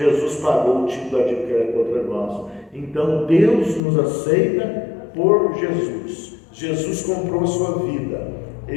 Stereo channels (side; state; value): right; drops out; at 3.8 s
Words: pagou o título da dívida contra nós. Então Deus nos aceita por Jesus. Jesus comprou a sua vida.